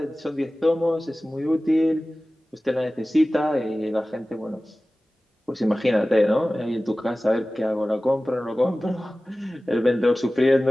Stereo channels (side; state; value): both; normal; correlation 0.97